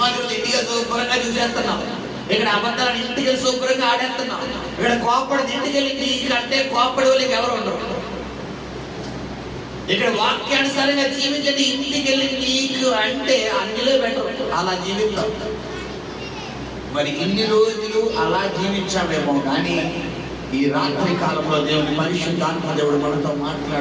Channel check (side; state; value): both; identical; correlation 1.00